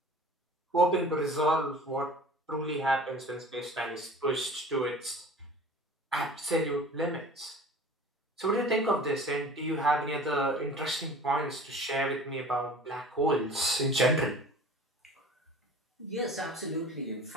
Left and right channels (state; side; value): normal; both; correlation 0.43